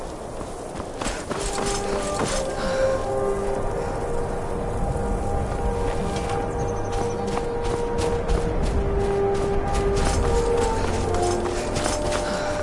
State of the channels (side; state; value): both; identical; correlation 1.00